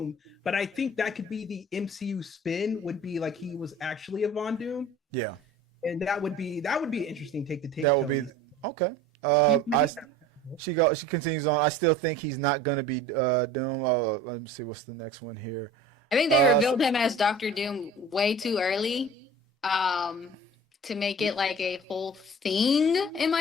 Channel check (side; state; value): both; normal; correlation 0.42